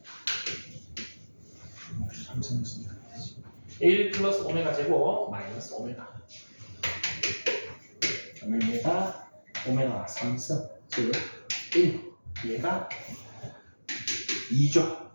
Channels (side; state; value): both; inverted; correlation -1.00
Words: 1 플러스 오메가 제곱 마이너스 오메가 그러면 얘가 오메가 3승 즉 1 얘가 2죠.